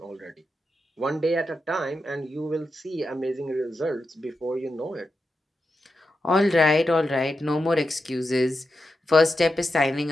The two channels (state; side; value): normal; both; correlation 0.88